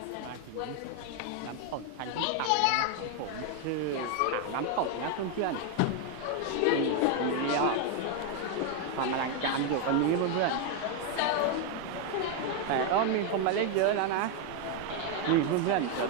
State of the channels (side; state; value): both; different; correlation 0.01